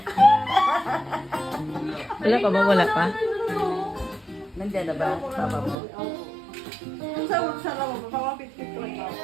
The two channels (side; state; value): left; drops out; at 5.8 s